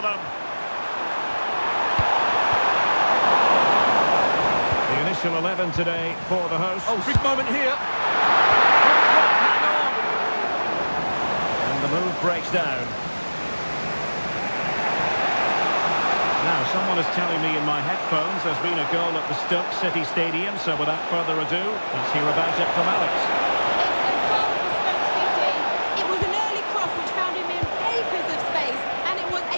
The initial 11 today for the hosts. Oh, big moment here. Hang on. And the move breaks down. Now, someone is telling me in my headphones there's been a goal at the Stoke City Stadium, so without further ado, let's hear about it from Alex.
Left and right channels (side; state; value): both; inverted; correlation -1.00